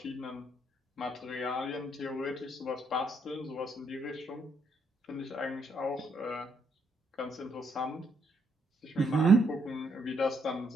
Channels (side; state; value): both; normal; correlation 0.74